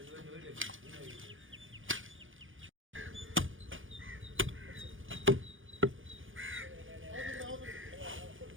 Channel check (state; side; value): late; left; 0.57 ms